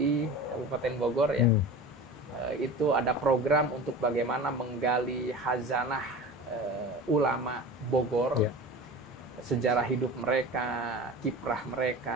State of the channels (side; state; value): both; normal; correlation 0.34